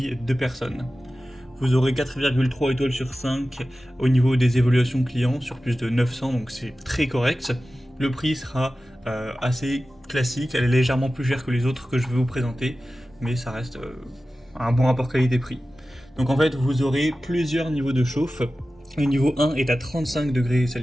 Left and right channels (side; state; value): both; normal; correlation 0.95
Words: de personnes. Vous aurez 4,3 étoiles sur 5 au niveau des évaluations clients, sur plus de 900, donc c'est très correct. Le prix sera assez classique, elle est légèrement plus chère que les autres que je vais vous présenter, mais ça reste un bon rapport qualité-prix. Donc en fait, vous aurez plusieurs niveaux de chauffe. Le niveau 1 est à 35 degrés